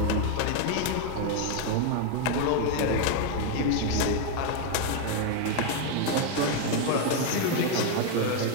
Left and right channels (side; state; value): both; different; correlation 0.01